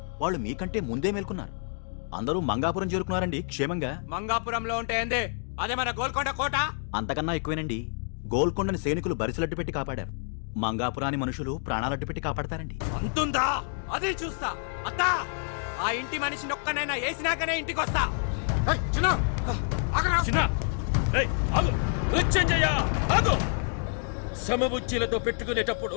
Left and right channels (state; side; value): silent; right; 59 dB below the other